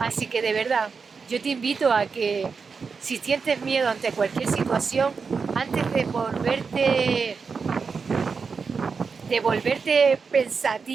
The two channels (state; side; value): quieter; left; 5.2 dB